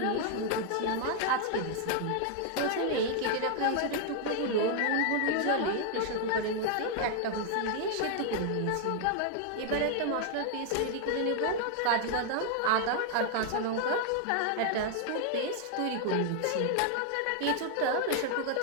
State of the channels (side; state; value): both; different; correlation 0.00